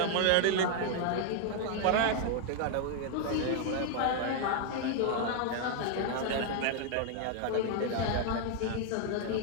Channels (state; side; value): different; both; correlation 0.00